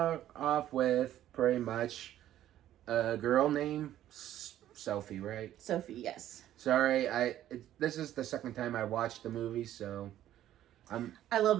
with pretty much a girl named Sophie, right? Sophie, yes. Sorry, this is the second time I watched the movie, so I love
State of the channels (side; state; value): left; quieter; 12.4 dB